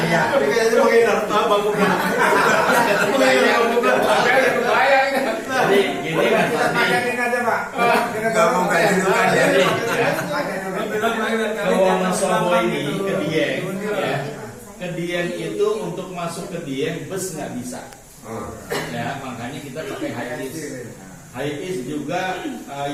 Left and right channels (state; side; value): identical; both; correlation 1.00